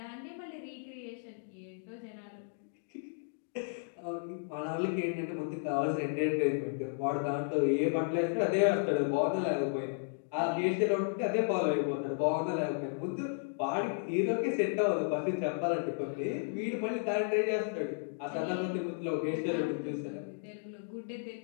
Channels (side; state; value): right; silent; digital silence